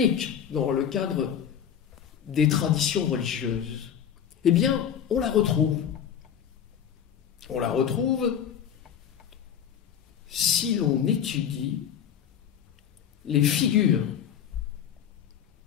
dans le cadre des traditions religieuses, eh bien, on la retrouve. On la retrouve si l'on étudie les figures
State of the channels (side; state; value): right; quieter; 8.8 dB